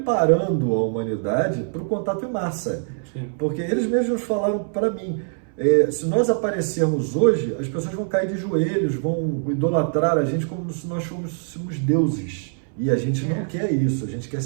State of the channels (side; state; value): left; silent; 63 dB below the other